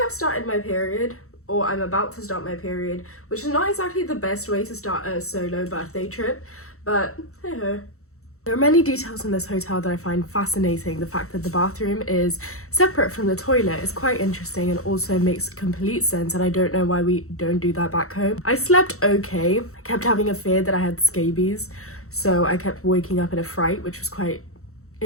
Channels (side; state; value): right; late; 0.64 ms